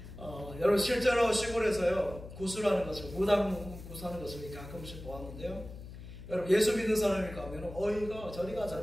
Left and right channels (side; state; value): left; noise; hum, 13 dB below the sound